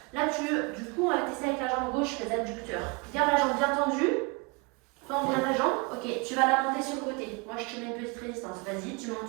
Là, du coup, on va tester avec la jambe gauche les adducteurs. Garde la jambe bien tendue. Tends bien ta jambe. Ok, tu vas la monter sur le côté. Moi, je te mets une petite résistance. Vas-y, tu montes.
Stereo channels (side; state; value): left; quieter; 29.6 dB